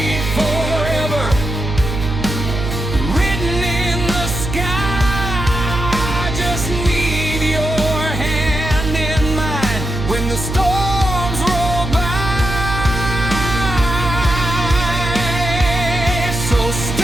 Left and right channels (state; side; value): noise; right; hum, 4 dB below the sound